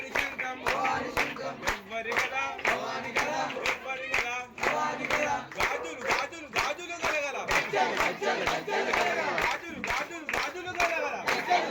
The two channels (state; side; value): identical; both; correlation 1.00